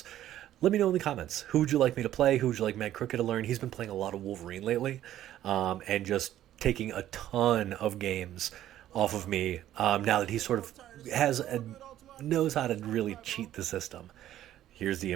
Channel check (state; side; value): quieter; left; 12.5 dB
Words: let me know in the comments. Who would you like me to play? Who would you like MadCrooked to learn? He's been playing a lot of Wolverine lately, and just taking a ton of games off of me now that he sort of knows how to really cheat the system. Here's the